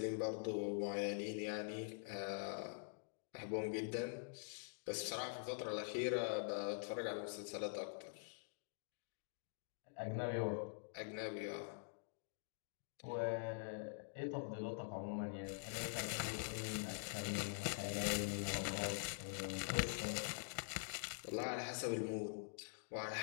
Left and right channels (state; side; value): silent; right; digital silence